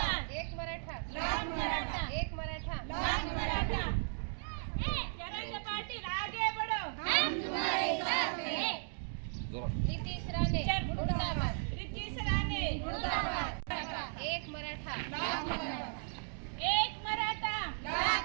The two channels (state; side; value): silent; left; digital silence